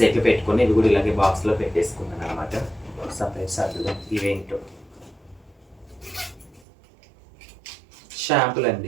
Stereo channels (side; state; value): left; drops out; at 6.7 s